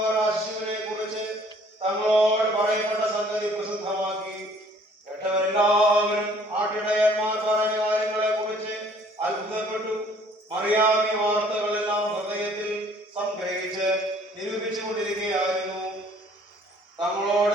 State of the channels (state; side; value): normal; both; correlation 0.57